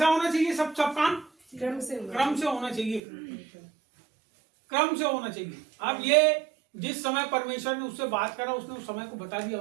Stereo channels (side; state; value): left; drops out; at 3.0 s